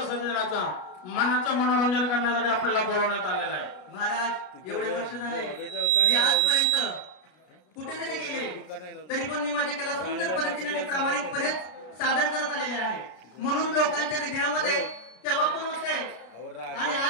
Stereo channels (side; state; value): right; late; 33 ms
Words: मनाचं मनोरंजन करण्यासाठी आपल्याला बोलवण्यात आलेलं आहे. महाराज एवढे वर्ष झाले मी आजपर्यंत कुठेतरी गेले तरी पण मी माझी कला सुंदर पद्धतीने प्रामाणिकपणे सादर करत आलेले आहे. म्हणून लोकांच्या हृदयामध्ये तेव्हा पण होते आणि